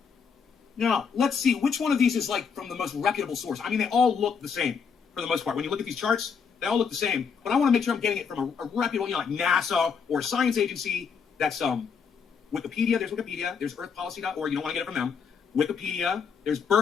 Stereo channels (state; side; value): quieter; right; 6.2 dB